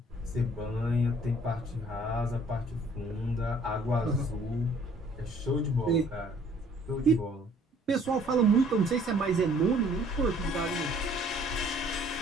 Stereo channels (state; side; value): normal; both; correlation 0.58